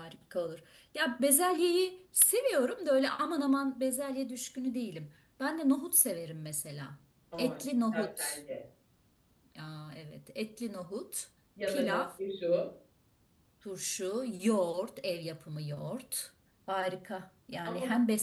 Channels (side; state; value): both; identical; correlation 1.00